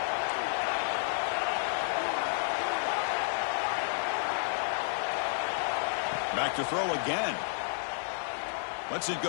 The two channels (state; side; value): silent; right; 57 dB below the other